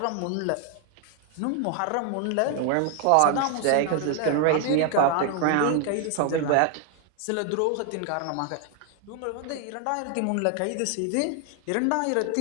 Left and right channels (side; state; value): both; different; correlation 0.00